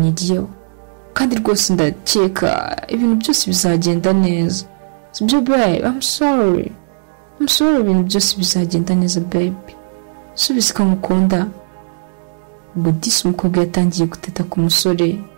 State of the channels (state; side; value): silent; left; digital silence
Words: kandi rwose ndakeka ibintu byose bizagenda neza sibyo babe? I'm sorry, ibintu byose bizagenda neza babe, subiza ko ngukunda. Ubwo disi umukobwa yatangiye guteta ku musore